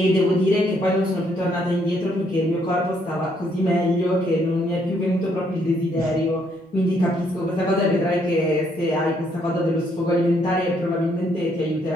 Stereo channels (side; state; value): both; normal; correlation 0.70